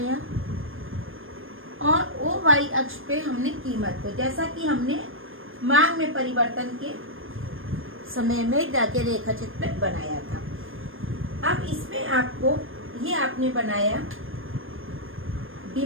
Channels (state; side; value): late; left; 0.59 ms